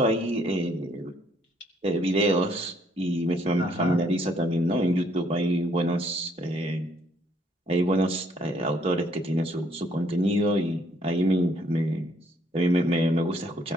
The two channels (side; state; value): both; normal; correlation 0.66